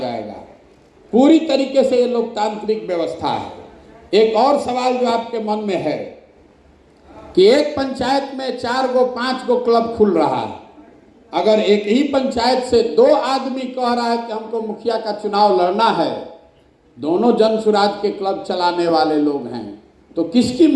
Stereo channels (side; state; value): both; identical; correlation 1.00